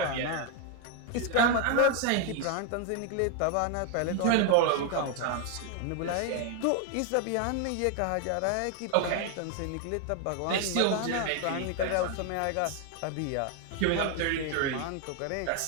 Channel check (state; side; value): different; both; correlation 0.00